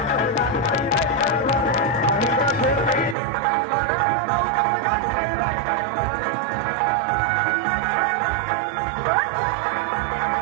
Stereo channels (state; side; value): drops out; left; at 3.2 s